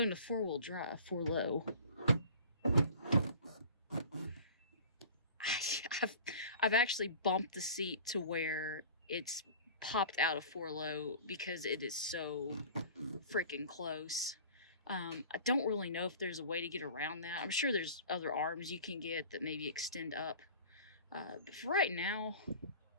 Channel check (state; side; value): inverted; both; correlation -0.42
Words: into 4-wheel drive, 4-low. I've actually bumped the seat to where it's popped out of 4-low because it is so freaking close. I don't really know if there's a way to get around that. I'm sure there's other arms you can get that maybe extend up. But for right now,